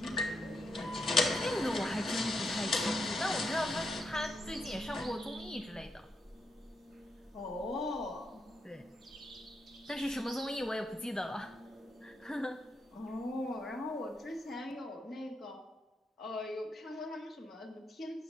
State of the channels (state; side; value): normal; both; correlation 0.81